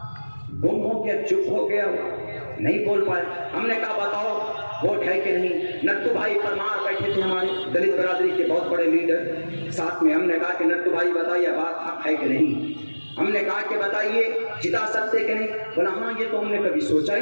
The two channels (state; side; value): inverted; both; correlation -1.00